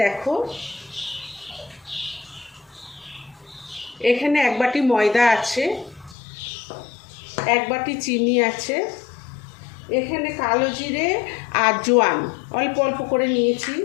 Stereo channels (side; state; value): right; drops out; at 6.2 s